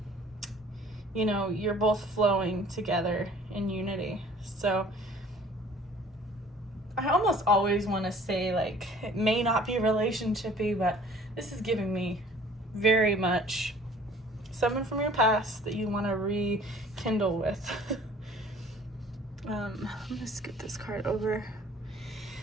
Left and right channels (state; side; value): normal; both; correlation 0.52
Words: You're both flowing together in unity. So I almost always want to say, like, it may not be relationship-y, but this is giving me very much someone from your past that you want to rekindle with. I'm gonna scoot this card over.